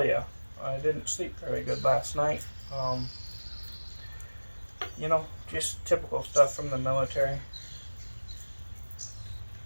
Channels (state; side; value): inverted; both; correlation -1.00